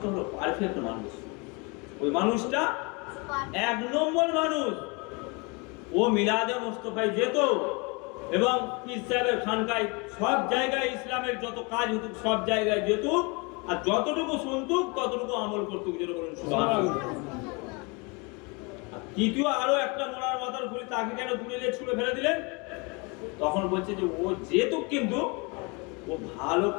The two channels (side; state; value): right; quieter; 29.7 dB